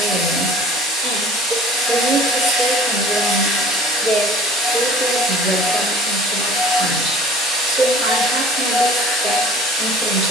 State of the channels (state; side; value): normal; both; correlation 0.46